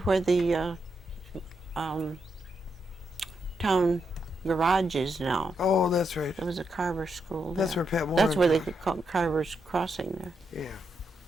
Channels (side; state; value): both; normal; correlation 0.82